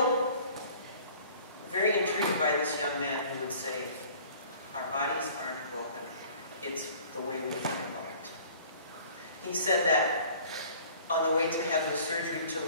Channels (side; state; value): both; inverted; correlation -0.50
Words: very intrigued by this young man who would say, our bodies aren't broken. It's the way we think about it. He said that on the way to have the surgery to